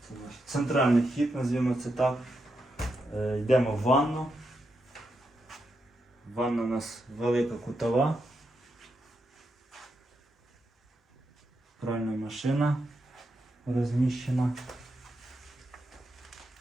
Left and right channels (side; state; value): both; normal; correlation 0.84